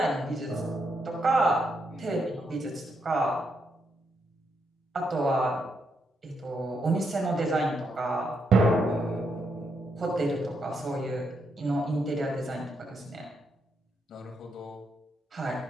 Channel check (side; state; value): both; normal; correlation 0.79